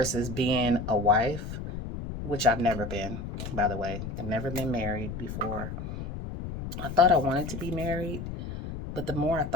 being a wife, which I've never been, by the way. I've never been married before. I thought I wanted to be married, but the more I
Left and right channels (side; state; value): left; noise; rumble, 7 dB below the sound